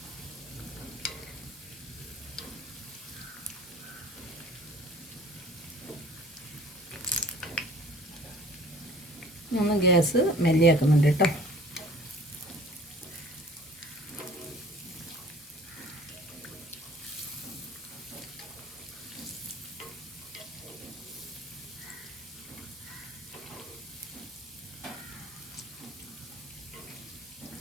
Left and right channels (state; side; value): normal; both; correlation 0.50